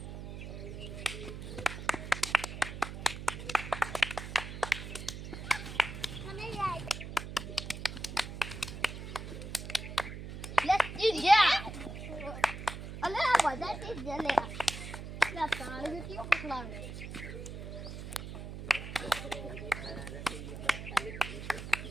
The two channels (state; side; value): noise; right; hum, 8 dB below the sound